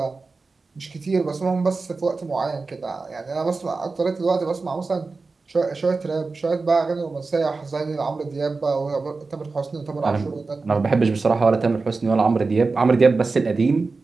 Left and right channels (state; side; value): quieter; left; 4.0 dB